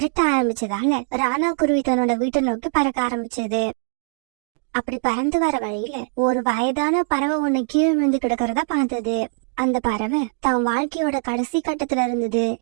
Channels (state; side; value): silent; left; 64 dB below the other